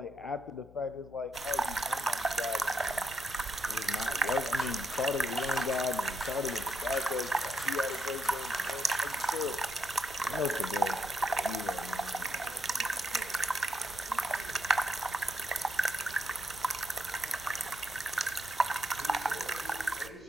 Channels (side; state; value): left; noise; hum, 22 dB below the sound